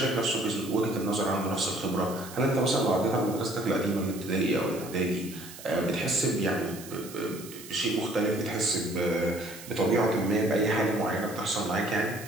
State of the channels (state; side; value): noise; right; hiss, 15 dB below the sound